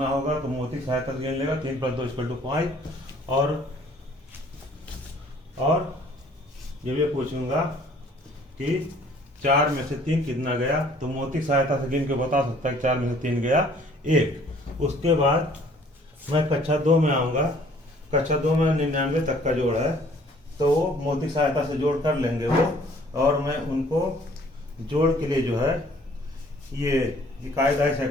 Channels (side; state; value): both; normal; correlation 0.57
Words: होगा, तो मोती सहायता से गिन लेगा 3 + 2 = 5। और ये भी पूछूंगा कि 4 में से 3 कितना गया, तो मोती सहायता से गिन के बता सकता है 4 में से 3 गया 1। उसके बाद मैं कक्षा 2 में आऊँगा। कक्षा 2 में 99 तक का जोड़ है, तो वो मोती सहायता से जोड़ कर लेंगे वो, और मैं उनको जोड़ के लिए जो है ये कायदा है